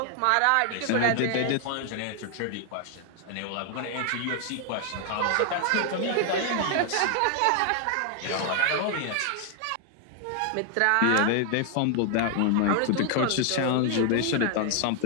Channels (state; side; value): different; both; correlation 0.00